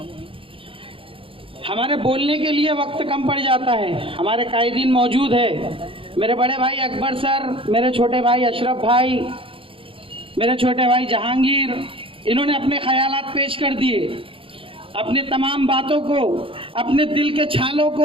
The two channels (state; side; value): late; left; 0.26 ms